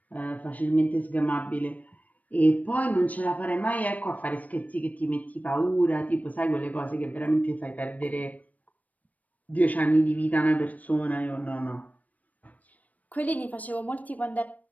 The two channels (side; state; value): right; late; 0.073 ms